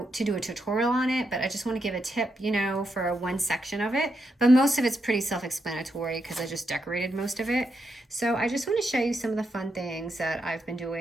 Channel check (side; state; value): both; normal; correlation 0.83